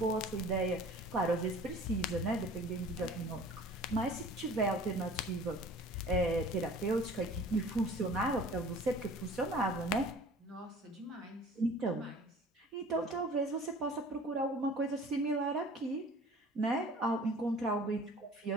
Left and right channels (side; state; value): both; normal; correlation 0.47